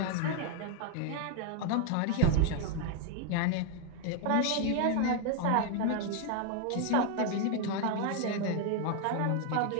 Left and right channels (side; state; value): both; different; correlation 0.01